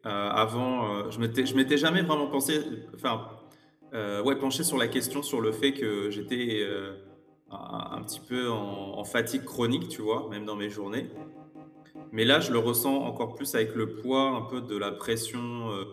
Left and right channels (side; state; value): both; identical; correlation 1.00